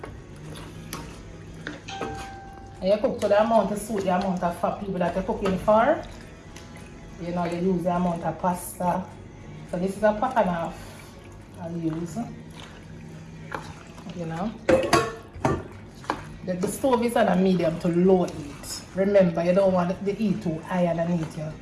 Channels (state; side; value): identical; both; correlation 1.00